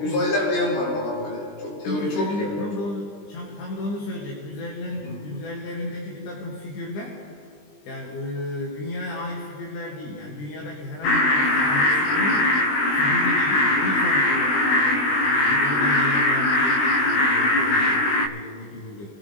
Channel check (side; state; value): right; late; 20 ms